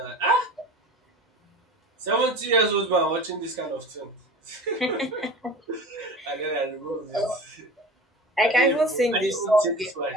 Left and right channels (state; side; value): normal; both; correlation 0.37